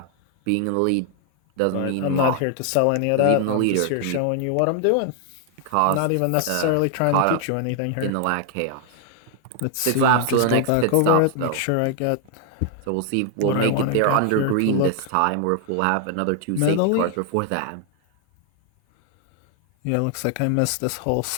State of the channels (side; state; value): both; different; correlation 0.00